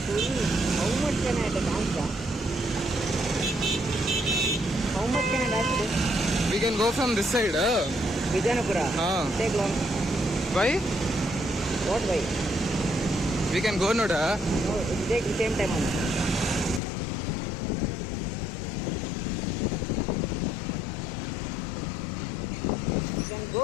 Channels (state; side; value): drops out; right; at 16.8 s